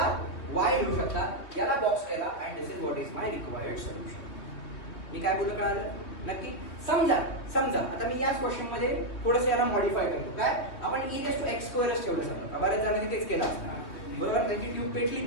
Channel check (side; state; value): right; late; 3.2 ms